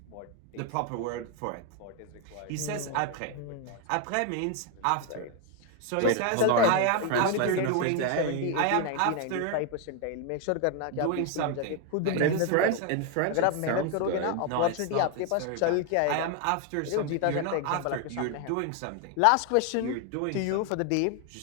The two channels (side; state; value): both; different; correlation 0.01